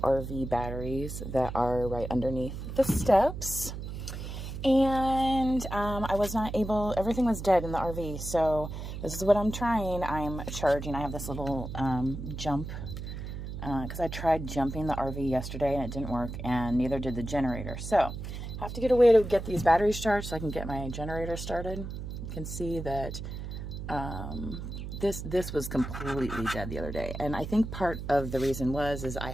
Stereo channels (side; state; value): right; noise; hum, 7 dB below the sound